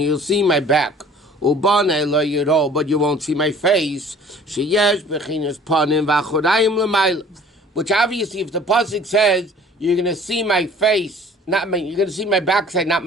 you'll see my back, but you won't see my face. Which obviously, if the pasuk says you're going to see my face, you're going to see my backside, not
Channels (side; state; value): both; normal; correlation 0.49